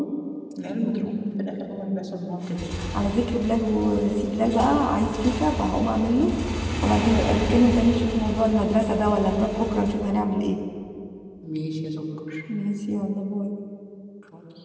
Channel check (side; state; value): both; identical; correlation 1.00